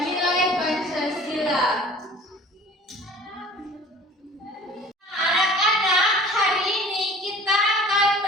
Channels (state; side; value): normal; both; correlation 0.47